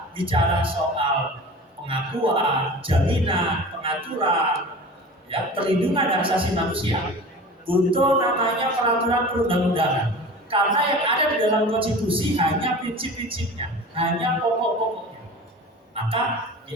bicara soal pengakuan, jaminan, pengaturan, ya, perlindungan hak asasi manusia, butuh namanya peraturan perundang-undangan. Karena yang ada di dalam konstitusi hanya prinsip-prinsipnya, hanya pokok-pokoknya. Maka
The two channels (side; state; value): both; normal; correlation 0.37